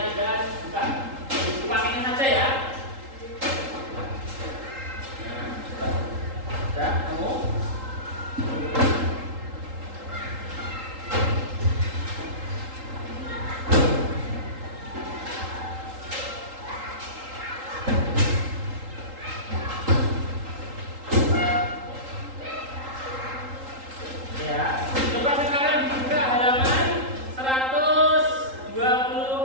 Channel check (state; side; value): late; left; 3.8 ms